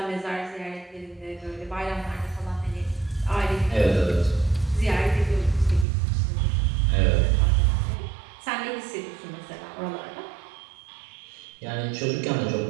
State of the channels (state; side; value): drops out; left; at 5.9 s